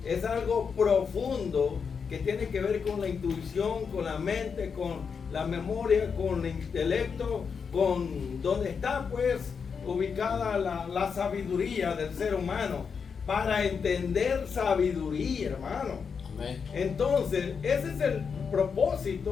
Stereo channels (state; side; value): quieter; right; 6.0 dB